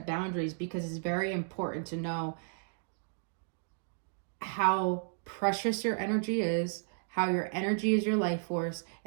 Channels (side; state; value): left; silent; digital silence